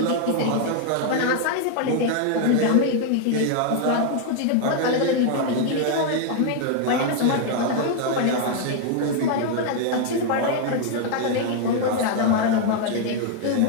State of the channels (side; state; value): both; different; correlation 0.00